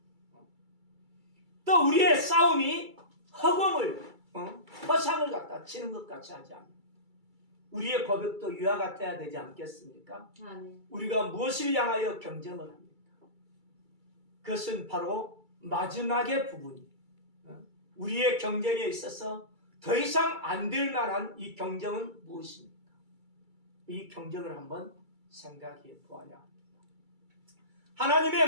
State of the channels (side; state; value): left; late; 2.3 ms